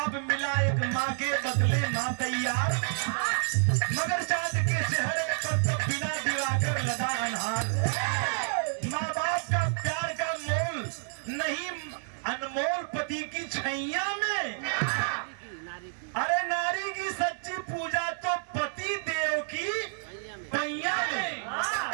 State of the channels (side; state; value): left; silent; digital silence